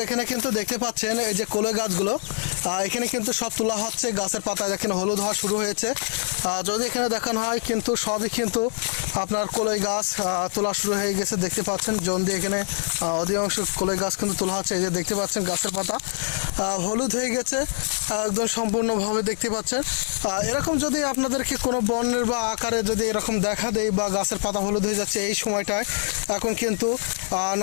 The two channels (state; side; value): silent; right; 62 dB below the other